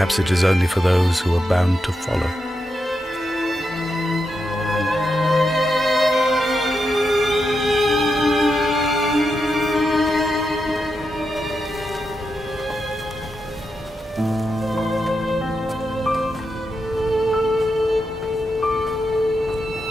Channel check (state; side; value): normal; both; correlation 0.86